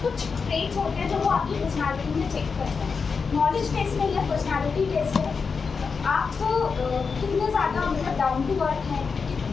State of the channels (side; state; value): right; quieter; 5.2 dB